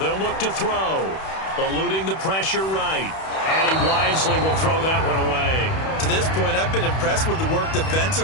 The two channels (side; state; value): right; late; 31 ms